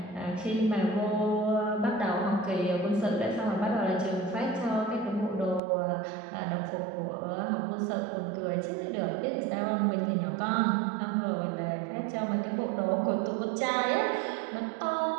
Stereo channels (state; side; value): drops out; left; at 5.6 s